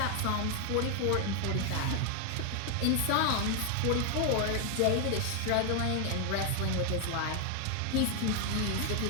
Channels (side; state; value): both; different; correlation 0.01